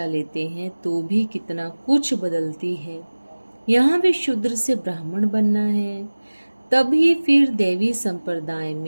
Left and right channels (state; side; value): inverted; both; correlation -1.00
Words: लेते हैं तो भी कितना कुछ बदलती है। यहाँ भी शूद्र से ब्राह्मण बनना है, तभी फिर देवी संप्रदाय